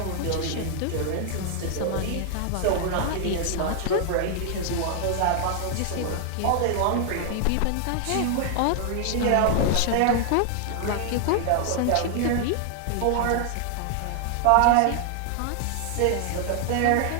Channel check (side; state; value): both; different; correlation 0.00